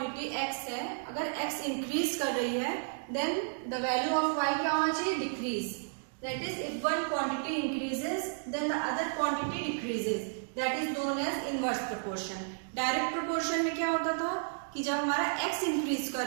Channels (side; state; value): left; silent; digital silence